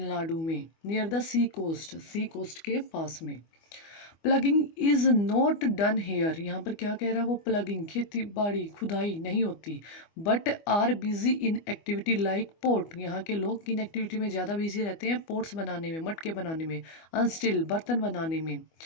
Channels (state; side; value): late; right; 25 ms